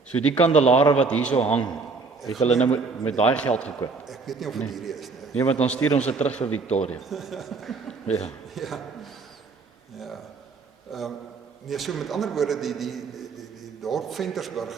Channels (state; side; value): quieter; left; 4.3 dB